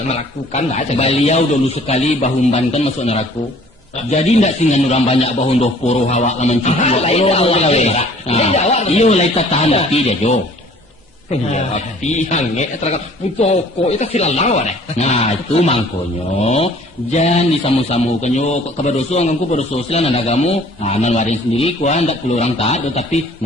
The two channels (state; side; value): normal; both; correlation 0.53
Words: lah. Beliau dulu sekali bahumbankan masuk neraka. Jadi ndak singan orang banyak bahun doh poro hawa laman cipu. Iyo lai tahan tapi dia jo. Tapi hange terangkat putoko itu silalawa deh. Nah itu mangkonyo jangan disamu-samu kanyo kebadoso angku badoso silan nagamu nan warin sendiri kuan ndak perlu orang taat tapi